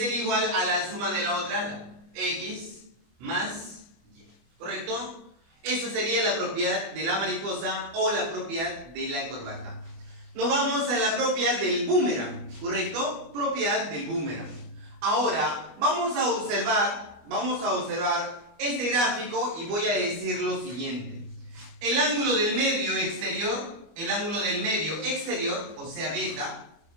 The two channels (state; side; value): late; left; 25 ms